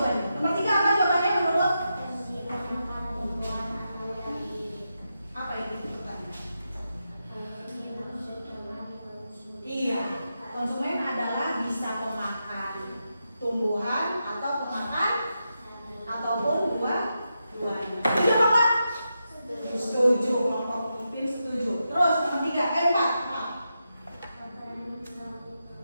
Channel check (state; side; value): inverted; both; correlation -0.87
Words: Nomor 3 apa jawabannya menurut? Apa itu pertanyaan? Iya, konsumen adalah bisa pemakan tumbuhan atau pemakan ataupun buah-buahan. Setuju apa Pak? Setuju, kelompok Upin setuju. Terus nomor 3,